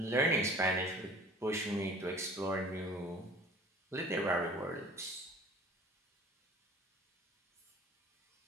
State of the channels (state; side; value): normal; both; correlation 0.46